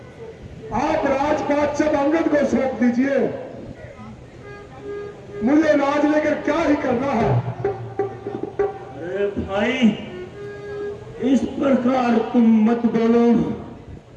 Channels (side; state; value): both; identical; correlation 1.00